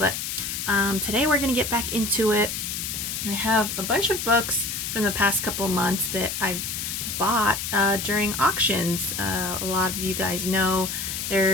today we're going to get back into it. I have a bunch of books from the past couple months that I've bought during auctions. A lot of you guys know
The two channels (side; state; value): left; noise; hiss, 4 dB below the sound